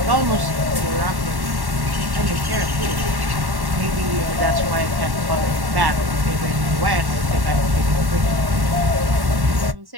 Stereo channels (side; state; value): left; late; 1.1 ms